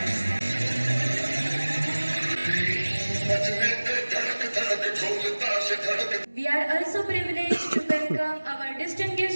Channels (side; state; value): both; inverted; correlation -1.00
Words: We are also privileged to welcome our